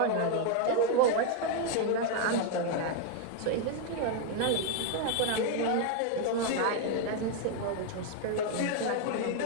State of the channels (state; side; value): different; both; correlation 0.00